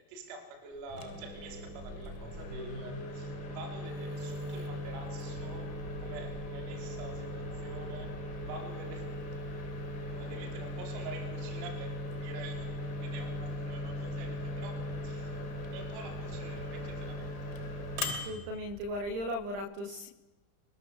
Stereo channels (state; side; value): late; left; 35 ms